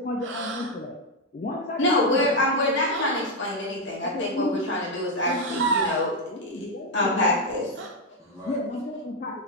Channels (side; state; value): both; normal; correlation 0.03